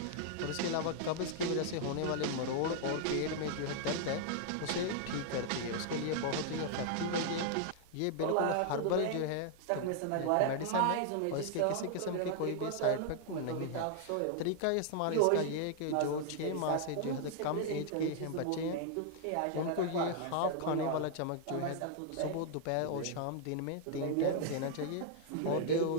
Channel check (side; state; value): both; different; correlation -0.01